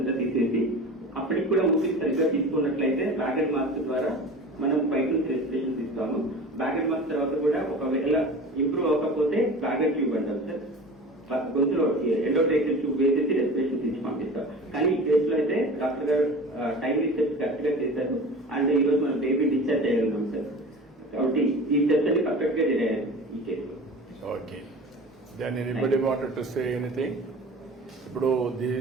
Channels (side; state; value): both; normal; correlation 0.37